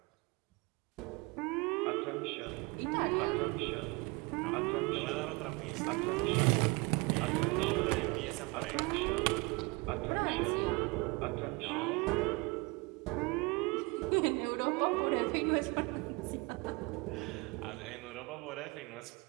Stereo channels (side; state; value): left; quieter; 27.0 dB